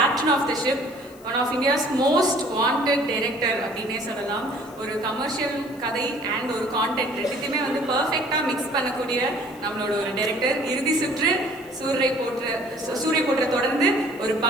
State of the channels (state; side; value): noise; left; hiss, 24 dB below the sound